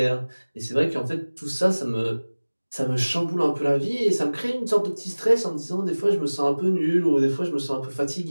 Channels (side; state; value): both; inverted; correlation -1.00